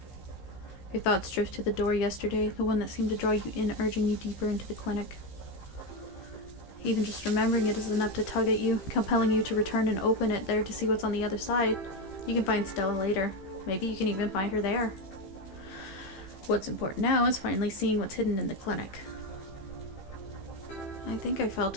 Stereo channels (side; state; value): right; late; 15 ms